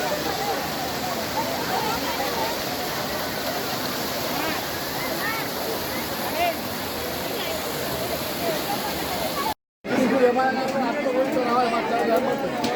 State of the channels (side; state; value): both; identical; correlation 1.00